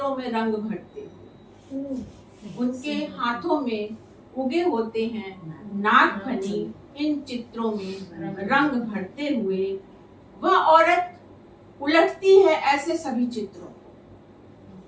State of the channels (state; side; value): identical; both; correlation 1.00